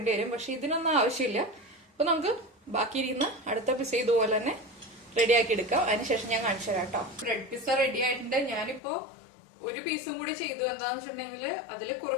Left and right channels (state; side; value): drops out; right; at 8.8 s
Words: വരും. പക്ഷെ ഇതിനൊന്നും ആവശ്യമില്ല. അപ്പൊ നമുക്ക് ബാക്കിയിരിക്കുന്ന അടുത്ത പിസ്സ ഇതുപോലെ തന്നെ റെഡിയാക്കി എടുക്കാം. അതിനുശേഷം ഞാൻ കാണിച്ചു തരാം കേട്ടോ. ബ്രെഡ് പിസ്സ റെഡി ആയിട്ടുണ്ട്. ഞാനിപ്പോ ഒരു പീസും കൂടി ചെയ്തു. എന്താന്ന് വെച്ചിട്ടുണ്ടെങ്കിൽ അതിൽ